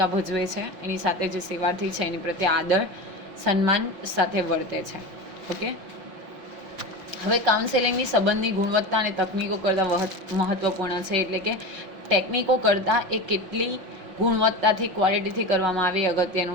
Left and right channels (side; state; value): left; late; 5.5 ms